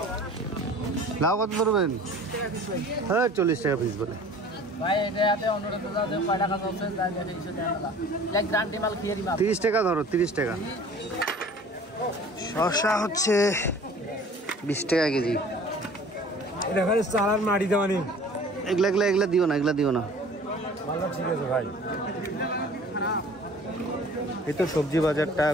লাউ কত ধরবেন? হ্যাঁ 40 টাকা পিস বলে। ভাই এটাতে 15 টাকা চলছে, 30 টাকা ধরো, 30 টাকা। শসা হচ্ছে 20 টাকা কেজি। চালার মাটি দেওয়া নেই। এগুলা দিও না, এগুলা দিও না। ঠিক আছে ভাই। এই তো সবজি বাজারটা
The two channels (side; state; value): both; normal; correlation 0.47